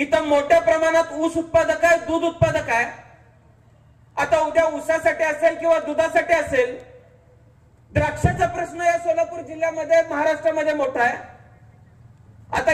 मोठ्या प्रमाणात ऊस उत्पादक आहे, दूध उत्पादक आहे. आता उद्या ऊसासाठी असेल किंवा दुधासाठी असेल, द्राक्षाचा प्रश्न या सोलापूर जिल्ह्यामध्ये महाराष्ट्रामध्ये मोठा आहे. आता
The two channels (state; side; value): identical; both; correlation 1.00